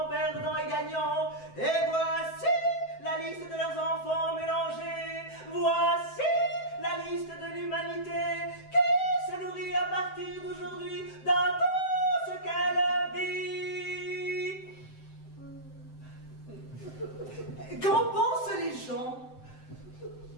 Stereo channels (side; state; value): right; late; 7.8 ms